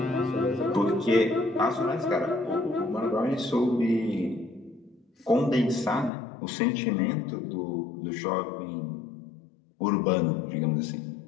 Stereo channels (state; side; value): drops out; right; at 6.1 s